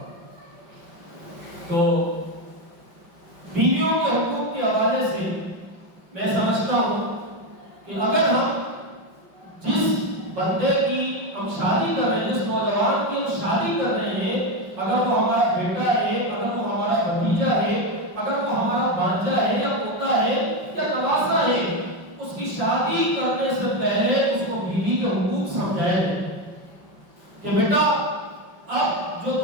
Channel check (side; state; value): left; late; 5.4 ms